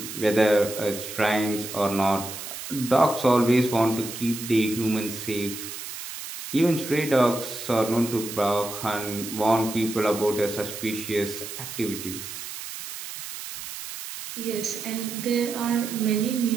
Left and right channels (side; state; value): right; noise; hiss, 9 dB below the sound